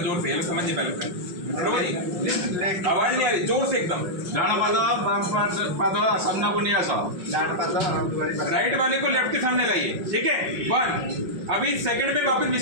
जोर से, ये समझिए पहले आवाज नहीं आ रही, जोर से एकदम। राइट वाले को लेफ्ट के सामने लाइए, ठीक है। 1 अभी सेकंड में वापस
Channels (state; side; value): late; left; 5.6 ms